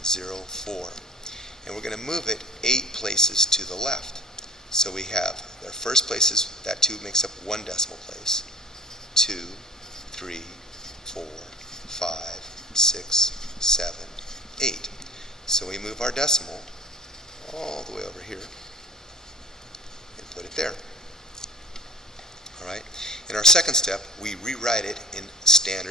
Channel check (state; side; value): normal; both; correlation 0.48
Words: and we're going to move it 8 places to the left. So we have our first places, that 2 makes up 1 decimal place. 2, 3, 4, 5, 6, 7, 8. So we move our decimal all the way over here and put it there. Alright? In our second step, we rewrite it in